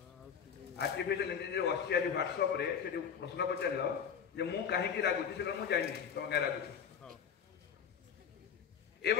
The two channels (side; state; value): right; quieter; 7.5 dB